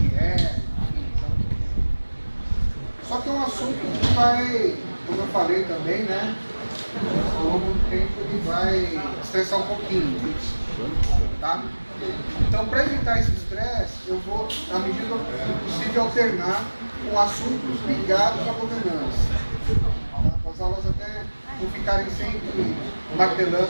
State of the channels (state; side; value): inverted; both; correlation -1.00